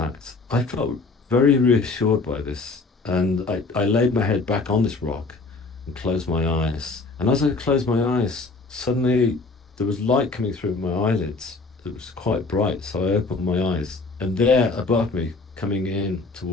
I felt very reassured by this. And I laid my head back on this rock and closed my eyes. And as I closed my eyes, suddenly there was light coming through my eyelids. It was quite bright. So I opened my eyes. And there above me, coming in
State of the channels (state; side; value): quieter; right; 3.7 dB